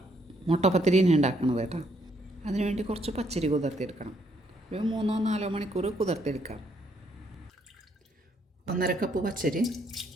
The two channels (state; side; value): normal; both; correlation 0.71